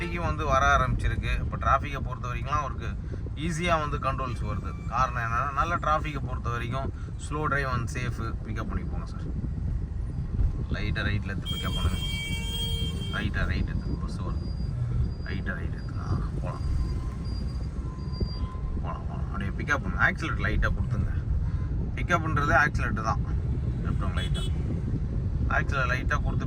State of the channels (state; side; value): identical; both; correlation 1.00